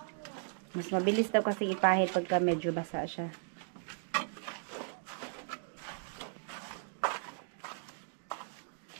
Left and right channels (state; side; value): silent; left; digital silence